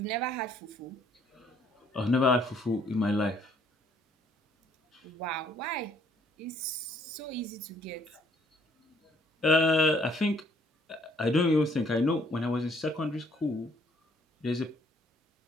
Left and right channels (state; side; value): normal; both; correlation 0.64